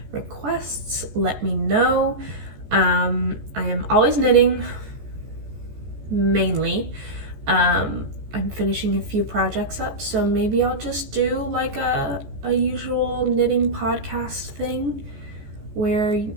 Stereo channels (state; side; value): late; left; 14 ms